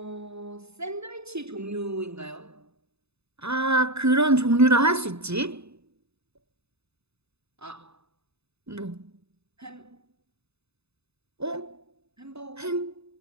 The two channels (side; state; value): left; late; 0.80 ms